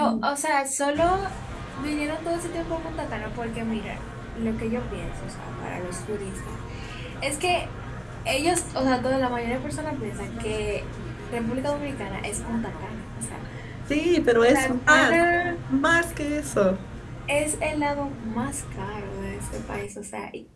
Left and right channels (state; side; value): identical; both; correlation 1.00